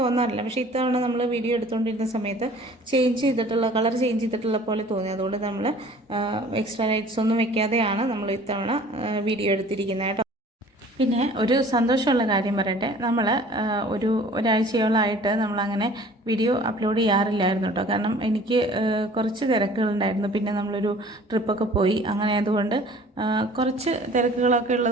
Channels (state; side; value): normal; both; correlation 0.49